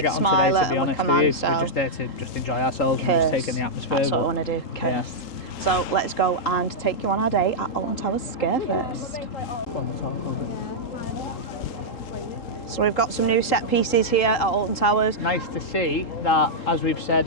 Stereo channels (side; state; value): right; late; 3.8 ms